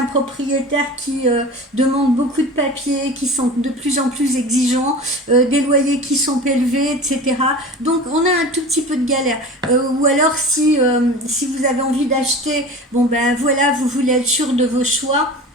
propriétaires qui demandent beaucoup de papiers, qui sont de plus en plus exigeants, des loyers qui sont élevés, etc. Donc on a un tout petit peu de galère. Ou alors si vous avez envie d'acheter, bon ben voilà, vous voulez être sûr de vos choix.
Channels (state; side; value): normal; both; correlation 0.35